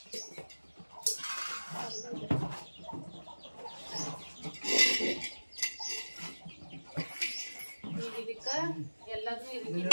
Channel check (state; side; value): inverted; both; correlation -1.00